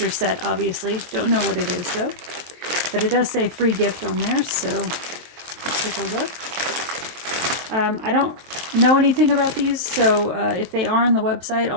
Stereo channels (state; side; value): late; left; 23 ms